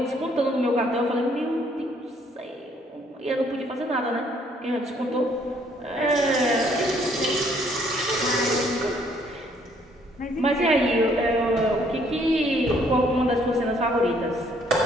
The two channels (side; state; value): both; normal; correlation 0.65